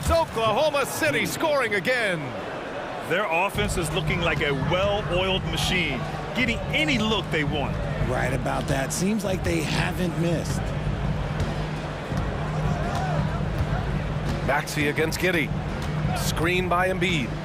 Oklahoma City scoring again. Their offense is looking like a well-oiled machine, getting any look they want. Right about that. Seems like they haven't missed. Maxey against Giddey. Screen by Embiid.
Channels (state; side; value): identical; both; correlation 1.00